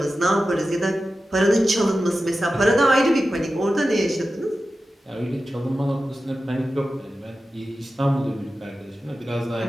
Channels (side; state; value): both; normal; correlation 0.93